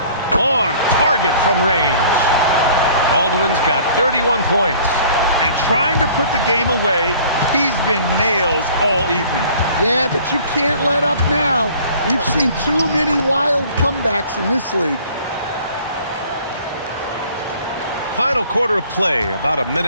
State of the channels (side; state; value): both; inverted; correlation -0.52